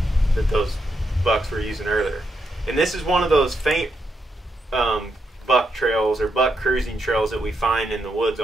that those bucks were using earlier. And this is one of those faint buck trails or buck cruising trails that we find in the woods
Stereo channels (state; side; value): normal; both; correlation 0.82